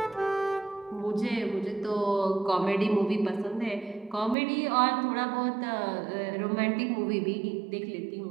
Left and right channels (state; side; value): drops out; left; at 4.4 s